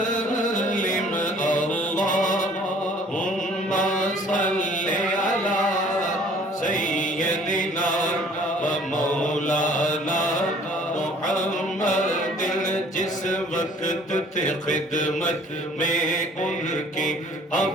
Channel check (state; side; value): normal; both; correlation 0.54